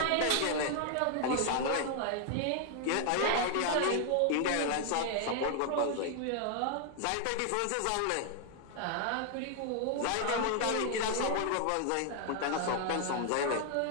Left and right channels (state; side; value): different; both; correlation 0.00